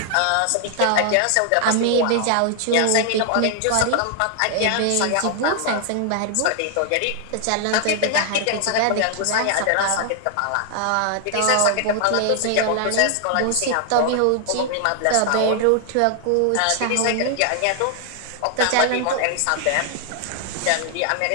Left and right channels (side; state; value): both; different; correlation 0.00